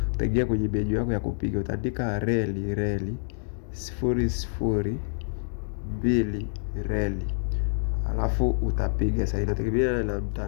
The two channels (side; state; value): right; silent; digital silence